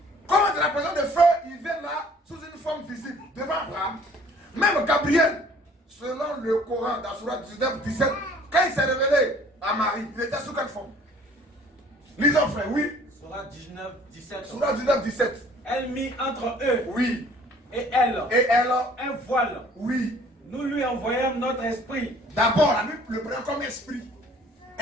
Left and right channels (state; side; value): normal; both; correlation 0.54